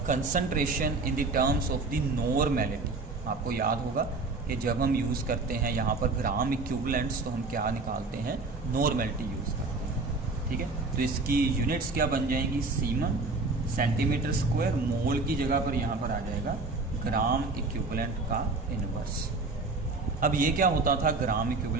concentration in the terms of the normality. आपको याद होगा कि जब हम यूज़ करते हैं यहाँ पर ग्राम इक्विवेलेंट्स, तो हम क्या निकालते हैं, नॉर्मेलिटी यूज़ करते हैं। ठीक है, तो इसकी यूनिट्स क्या बन जाएंगी, सीमन cm², मोल की जगह पर यहाँ पर आ जाएगा ग्राम इक्विवेलेंट का इनवर्स। अब ये क्या होता था ग्राम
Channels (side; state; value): left; quieter; 3.7 dB